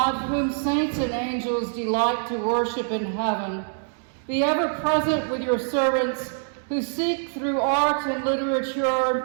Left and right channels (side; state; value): left; silent; digital silence